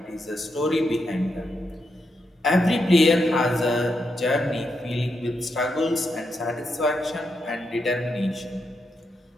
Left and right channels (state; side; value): normal; both; correlation 0.83